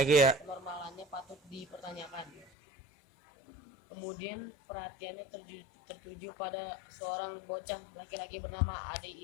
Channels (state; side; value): drops out; right; at 2.5 s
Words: patut dipertanyakan. Kemudian perhatiannya tertuju pada seorang bocah laki-laki bernama Ade